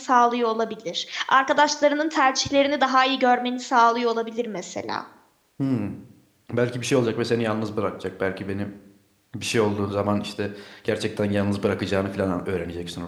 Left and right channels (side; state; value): both; identical; correlation 1.00